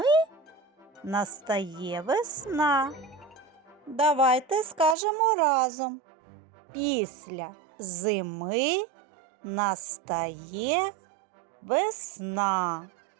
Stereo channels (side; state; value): left; drops out; at 5.0 s